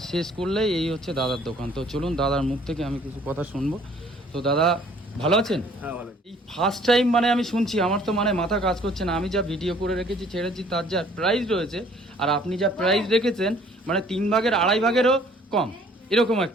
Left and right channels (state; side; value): normal; both; correlation 0.57